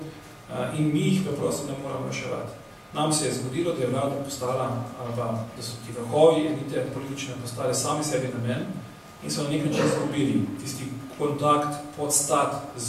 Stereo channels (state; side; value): identical; both; correlation 1.00